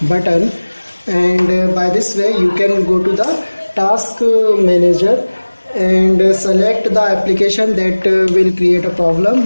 button, and by this way you can go to the task manager and select the application that will create a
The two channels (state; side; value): inverted; both; correlation -1.00